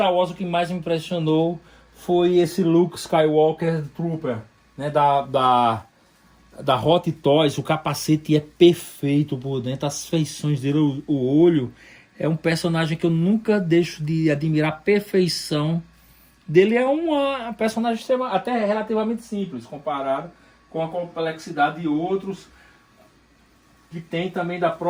Wars o que mais me impressionou foi esse Luke Skywalker Trooper, né, da Hot Toys. O capacete é perfeito por dentro, as feições dele, o olho. É um personagem que eu nunca deixo de admirar a perfeição dele. É uma personagem até relativamente simples comparado com a complexidade de outros que tem também da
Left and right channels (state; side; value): identical; both; correlation 1.00